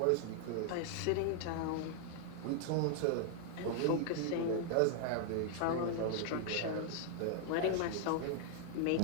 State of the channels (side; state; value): both; different; correlation 0.00